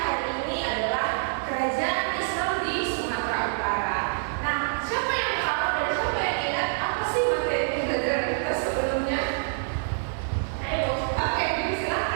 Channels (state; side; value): silent; left; 61 dB below the other